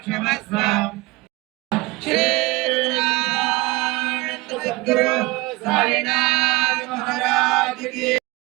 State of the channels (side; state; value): left; quieter; 22.2 dB